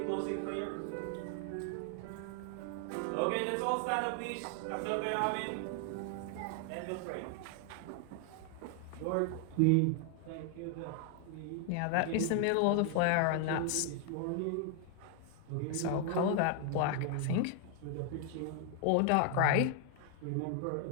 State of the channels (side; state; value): both; different; correlation 0.00